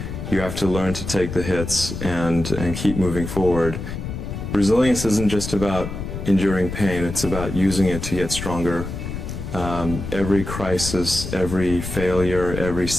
You have to learn to take the hits and keep moving forward. Resilience isn't just about enduring pain, it's about using it to get stronger. Every crisis, every failure, every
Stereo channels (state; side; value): noise; left; rumble, 7 dB below the sound